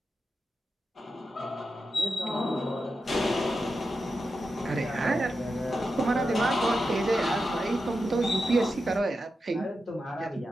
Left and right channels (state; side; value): normal; both; correlation 0.89